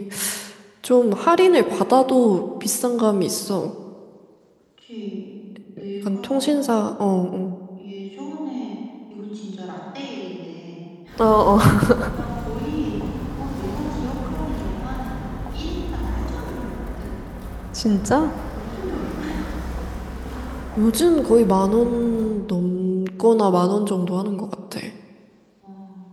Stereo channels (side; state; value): both; identical; correlation 1.00